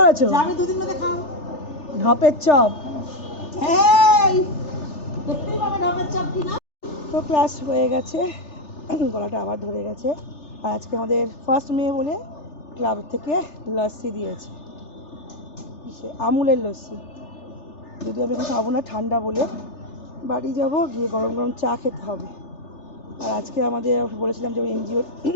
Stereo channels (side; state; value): right; late; 3.4 ms